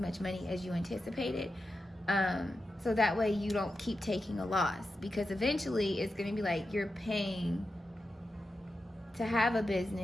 money as you anticipated, so that way you don't keep taking a loss, because eventually it's going to be like you're paying to have a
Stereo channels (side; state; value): both; normal; correlation 0.90